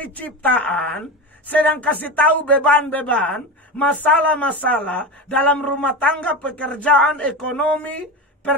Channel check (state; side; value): normal; both; correlation 0.23